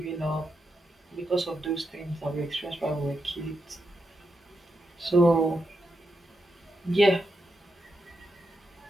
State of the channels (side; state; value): both; normal; correlation 0.85